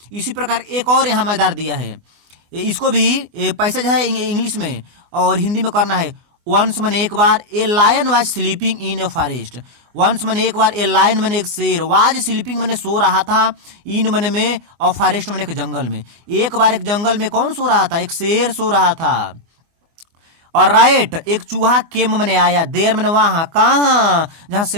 इसी प्रकार एक और यहाँ मजेदार दिया है, इसको भी पैसा जो है इंग्लिश में और हिंदी में करना है। वंस मैंने एक बार, a lion was sleeping in a forest. Once मैंने एक बार, ए लायन मैंने एक शेर, वाज स्लीपिंग मैंने सो रहा था, इन मैंने में, और फॉरेस्ट मैंने एक जंगल में। एक बार एक जंगल में कौन सो रहा था, एक शेर सो रहा था। और राइट, एक चूहा केम मैंने आया, देर मैंने वहां, कहाँ, जहां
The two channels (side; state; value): left; late; 24 ms